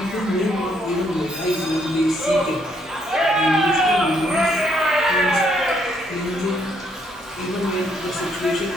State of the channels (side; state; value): both; normal; correlation 0.71